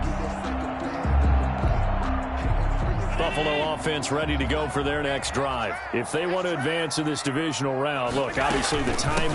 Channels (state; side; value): identical; both; correlation 1.00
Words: Buffalo offense ready to go for their next drive. If they want to advance in this divisional round, look, obviously the time